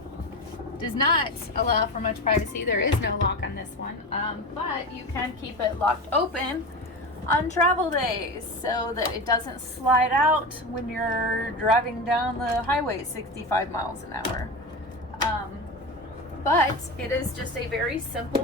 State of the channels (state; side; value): normal; both; correlation 0.24